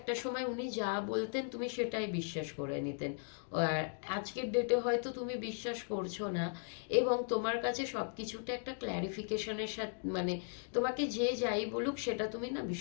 সময় উনি যা বলতেন তুমি সেটাই বিশ্বাস করে নিতেন, আর আজকের ডেটে হয়তো তুমি বিশ্বাস করছো না, এবং তোমার কাছে সব কিছুটা একটা ক্ল্যারিফিকেশনের সাথে মানে তোমাকে যে যাই বলুক সেটা তুমি না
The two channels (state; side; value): silent; right; 53 dB below the other